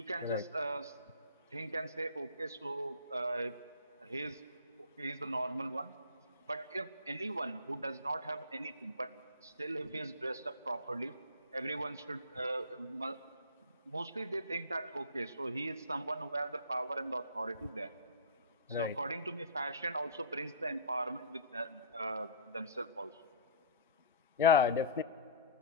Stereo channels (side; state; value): both; inverted; correlation -0.38